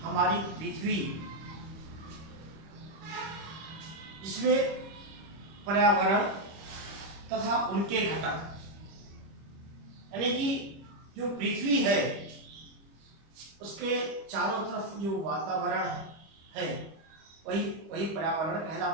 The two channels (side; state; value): left; late; 25 ms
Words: हमारी पृथ्वी, जिसमें पर्यावरण तथा उनके घटक, यानी कि जो पृथ्वी है उसके चारों तरफ जो वातावरण है वही पर्यावरण